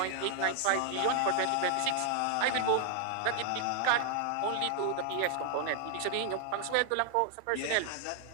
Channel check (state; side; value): different; both; correlation 0.00